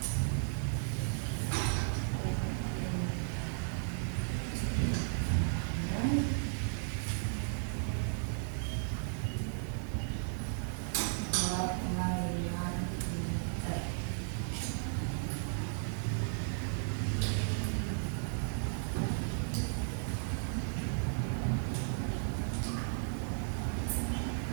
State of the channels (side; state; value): left; silent; digital silence